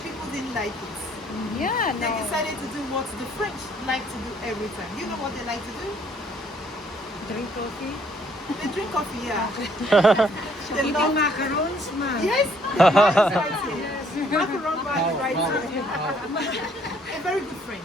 people didn't like it. Yeah, They no. decided to do what the French like to do every time. You know what they like to do? drink coffee, They drink coffee, yeah. They eating love macarons, ma. Yes, the man is right here. Macaron man is right here. A very good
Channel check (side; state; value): both; normal; correlation 0.64